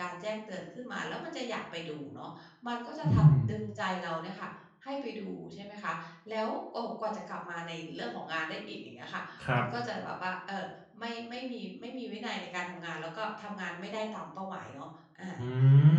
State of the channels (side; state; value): both; identical; correlation 1.00